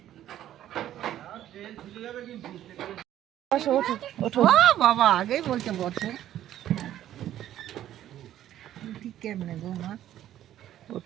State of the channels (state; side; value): quieter; left; 12.1 dB